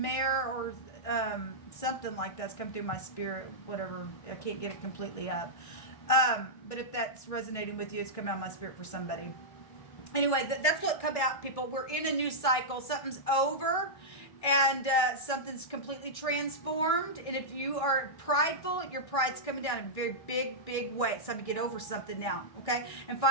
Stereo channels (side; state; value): right; late; 1.6 ms